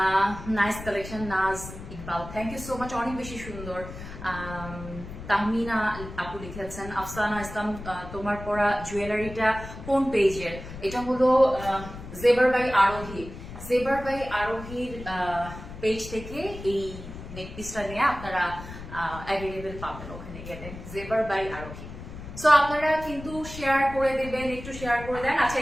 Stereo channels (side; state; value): left; noise; rumble, 12 dB below the sound